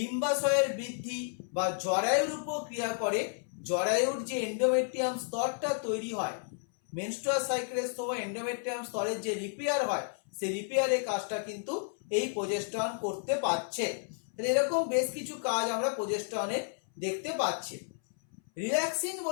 বৃদ্ধি বা জরায়ুর উপর ক্রিয়া করে, জরায়ুর যে এন্ডোমেট্রিয়াম স্তরটা তৈরি হয় মেনস্ট্রুয়াল সাইকেলের সময় এন্ডোমেট্রিয়াম স্তরের যে রিপেয়ার হয় সেই রিপেয়ারের কাজটা কিন্তু এই প্রোজেস্টেরন করতে পারছে। এরকম বেশ কিছু কাজ আমরা প্রোজেস্টেরনের দেখতে পাচ্ছি। রিল্যাক্সিন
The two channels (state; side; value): silent; right; 56 dB below the other